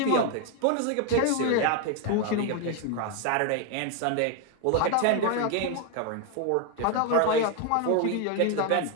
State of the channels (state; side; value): different; both; correlation 0.01